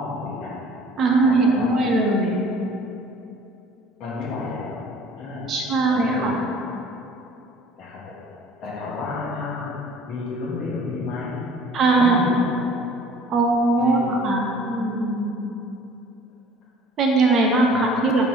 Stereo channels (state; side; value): normal; both; correlation 0.51